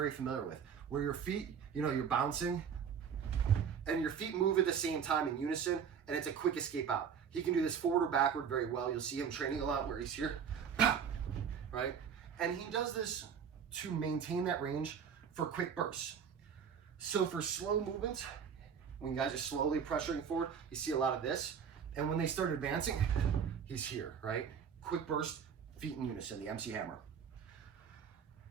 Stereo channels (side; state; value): left; quieter; 7.3 dB